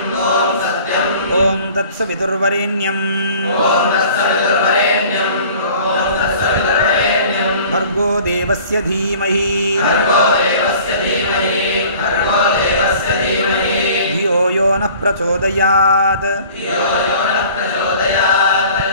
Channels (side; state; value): both; inverted; correlation -0.48